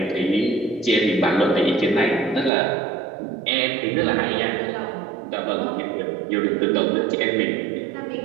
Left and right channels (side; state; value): left; drops out; at 2.5 s